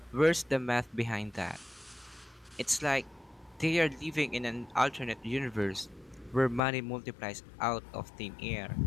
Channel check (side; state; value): right; drops out; at 6.6 s